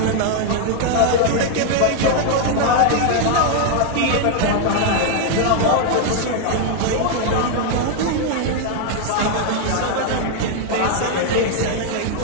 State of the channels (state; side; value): different; both; correlation 0.00